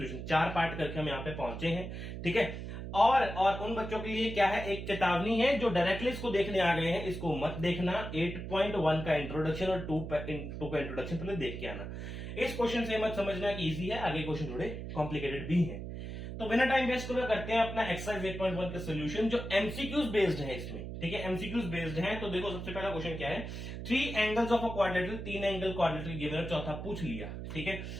4 पार्ट करके हम यहाँ पे पहुंचे हैं। ठीक है, और उन बच्चों के लिए क्या है, एक चेतावनी है जो डायरेक्टली इसको देखने आ गए हैं, इसको मत देखना। 8.1 का इंट्रोडक्शन और 2 का इंट्रोडक्शन पहले देख के आना। इस क्वेश्चन से मत समझना कि इजी है, आगे क्वेश्चन थोड़े कॉम्प्लिकेटेड भी हैं। तो बिना टाइम वेस्ट करे करते हैं अपना एक्सरसाइज 8.1 का सोल्यूशन, जो एमसीक्यूज बेस्ड है इसमें। ठीक है, एमसीक्यूज बेस्ड है। तो देखो, सबसे पहला क्वेश्चन क्या है, 3 angles of a quadrilateral, 3 angle quadrilateral given है, चौथा पूछ लिया। ठीक है,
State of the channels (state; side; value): noise; right; hum, 7 dB below the sound